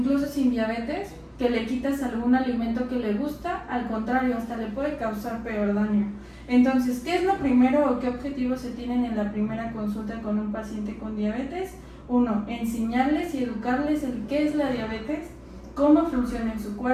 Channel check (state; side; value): identical; both; correlation 1.00